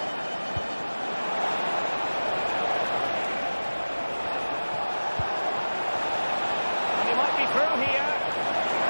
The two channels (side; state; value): both; inverted; correlation -1.00